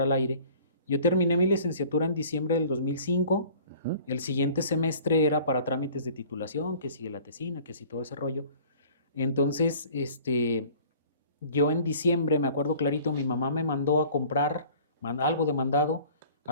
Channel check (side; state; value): both; inverted; correlation -0.49